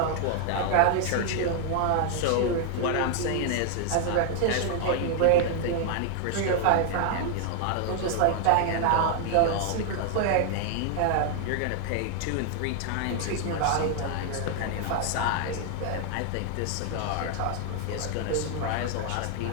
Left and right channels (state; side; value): different; both; correlation 0.00